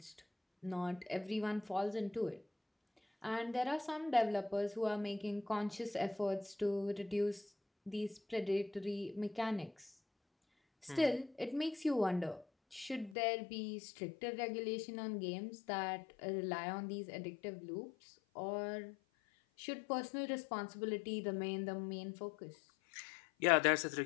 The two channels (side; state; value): right; drops out; at 13.2 s